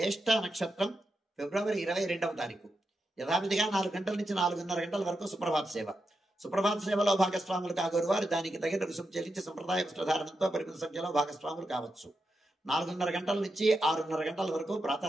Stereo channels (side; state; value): both; normal; correlation 0.87